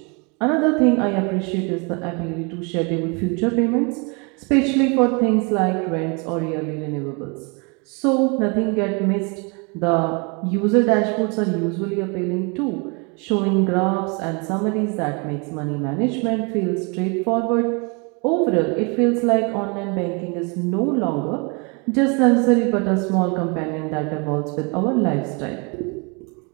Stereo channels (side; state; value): left; quieter; 32.1 dB